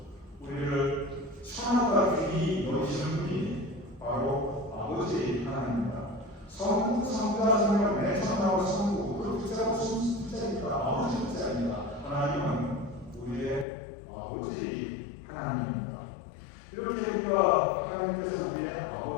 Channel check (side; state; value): right; drops out; at 13.7 s